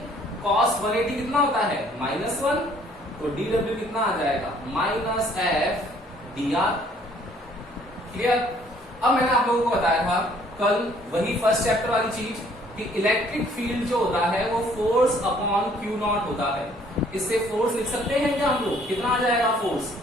cos 180 कितना होता है? -1। तो dW कितना आ जाएगा? Minus F dr। क्लियर? अब मैंने आप लोगों को बताया था कल वही फर्स्ट चैप्टर वाली चीज कि इलेक्ट्रिक फील्ड जो होता है वो फोर्स अपॉन Q नॉट होता है। इससे फोर्स लिख सकते हैं क्या हम लोग? कितना आ जाएगा force?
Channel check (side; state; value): both; normal; correlation 0.60